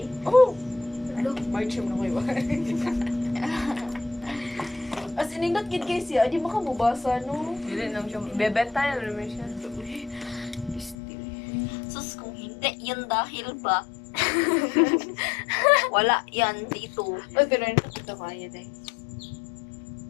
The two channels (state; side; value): drops out; right; at 11.0 s